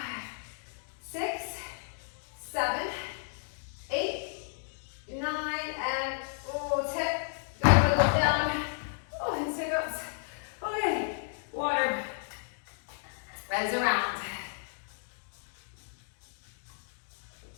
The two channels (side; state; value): right; silent; digital silence